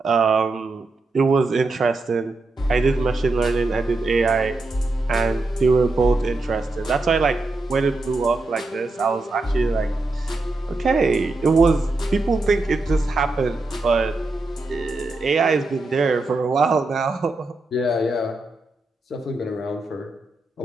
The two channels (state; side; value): quieter; left; 3.2 dB